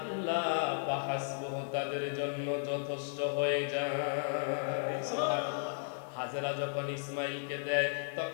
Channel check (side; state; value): right; silent; digital silence